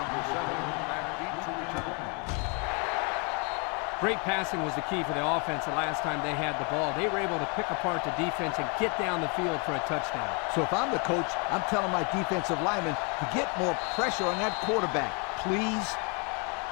7, McPhee to return. Great passing was the key for the offense the last time they had the ball. They were able to pick apart the defense and get down the field for a touchdown. So if I'm the coach, I'm telling my defensive linemen to get more pressure on that quarterback, please.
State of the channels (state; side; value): quieter; right; 34.6 dB